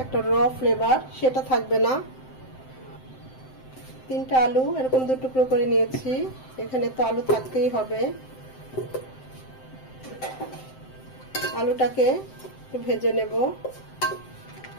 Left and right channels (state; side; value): late; right; 7.7 ms